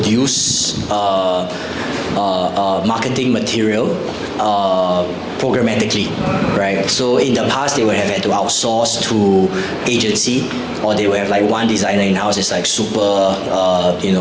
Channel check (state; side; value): identical; both; correlation 1.00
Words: marketing material programmatically, right? So in the past, they would have had to outsource to agency, or they would have like one designer in-house is like super,